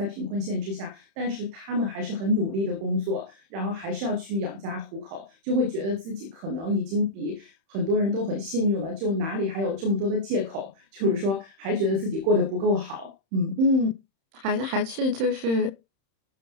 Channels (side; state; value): left; late; 31 ms